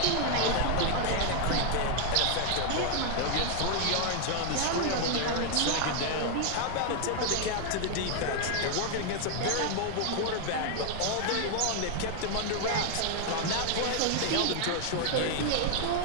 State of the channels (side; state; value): both; different; correlation 0.00